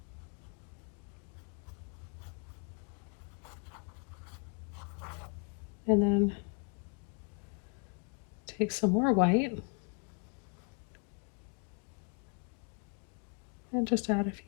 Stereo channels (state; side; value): quieter; right; 36.1 dB